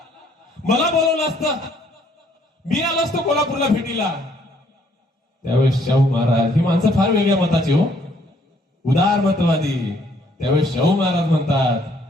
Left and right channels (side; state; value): both; normal; correlation 0.65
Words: मला बोलवलं असतं, मी आलो असतो कोल्हापूरला भेटीला. त्यावेळेस शाहू महाराज, ही माणसं फार वेगळ्या मताची हो, उदार मतवादी. त्यावेळेस शाहू महाराज म्हणतात,